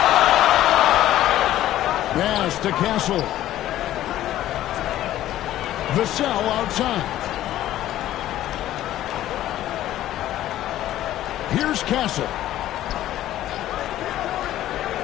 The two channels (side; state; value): right; quieter; 13.5 dB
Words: Pass to Castle. Vassell outside. Here's Castle.